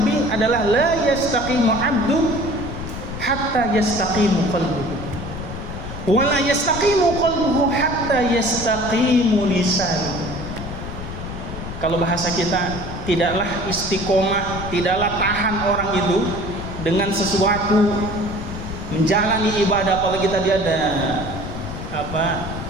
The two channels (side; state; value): left; noise; rumble, 8 dB below the sound